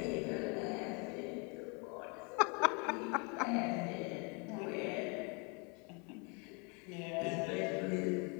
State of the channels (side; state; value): right; quieter; 32.3 dB